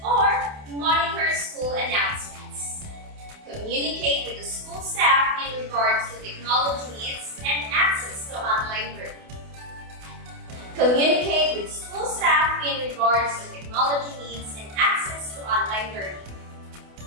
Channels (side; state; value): left; late; 28 ms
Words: or monitor school announcements. Communicate with the school staff in regards to technology needs and access to online learning. Communicate with school staff in regards to technology needs and access to online learning.